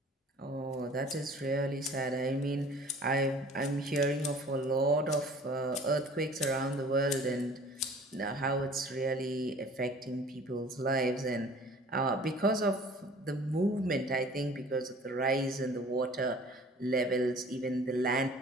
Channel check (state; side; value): normal; both; correlation 0.48